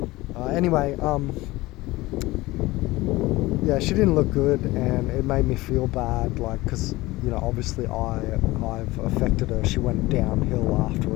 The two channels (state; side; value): quieter; right; 19.6 dB